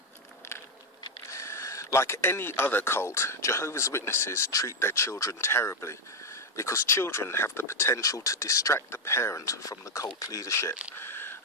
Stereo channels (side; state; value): both; normal; correlation 0.06